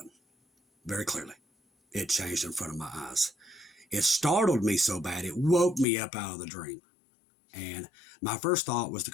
very clearly. It changed in front of my eyes. It startled me so bad, it woke me up out of the dream. And my first thought was to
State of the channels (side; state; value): right; drops out; at 5.9 s